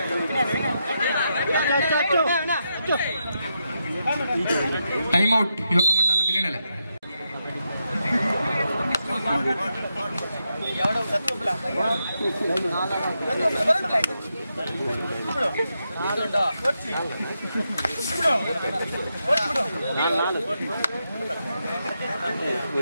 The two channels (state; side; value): inverted; both; correlation -0.84